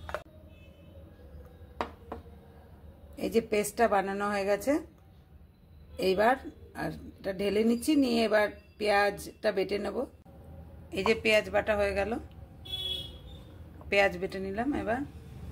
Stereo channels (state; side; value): identical; both; correlation 1.00